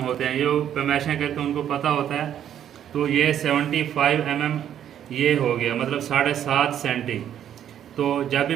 होते हैं, जो पैमाइशें करते हैं उनको पता होता है। तो ये 75 mm ये हो गया, मतलब 7.5 सेंटी। तो जब भी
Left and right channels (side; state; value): left; quieter; 10.1 dB